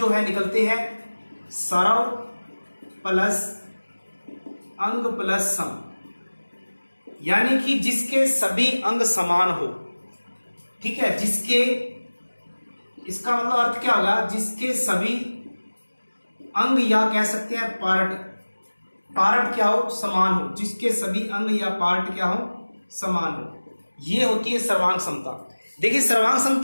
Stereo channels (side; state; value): both; inverted; correlation -1.00